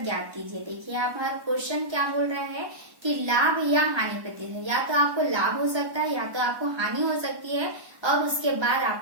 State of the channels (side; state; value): left; late; 1.1 ms